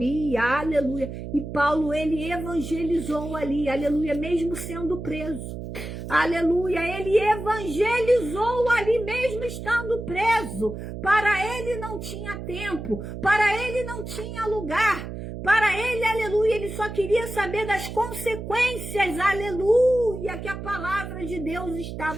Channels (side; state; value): right; noise; hum, 8 dB below the sound